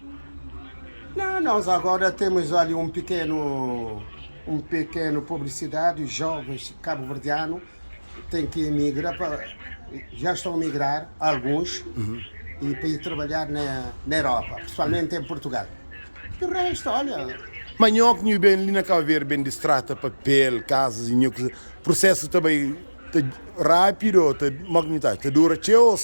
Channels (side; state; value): both; inverted; correlation -1.00